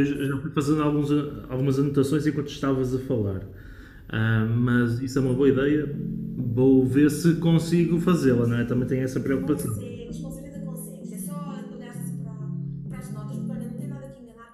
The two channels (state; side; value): identical; both; correlation 1.00